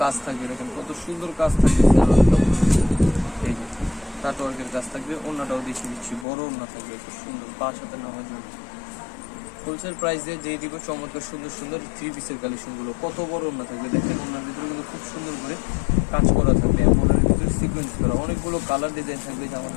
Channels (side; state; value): right; drops out; at 6.2 s